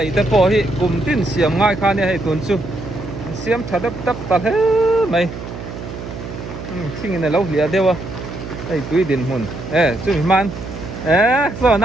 te po hi kum tin siam ngai kha ne hei tun chu siam thadap tap ta he mai thing in lo hlia dewa hei tui din hun chu man so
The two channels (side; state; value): right; noise; hum, 10 dB below the sound